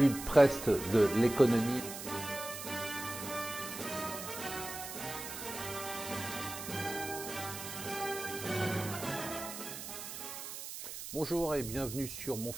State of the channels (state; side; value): noise; right; hiss, 9 dB below the sound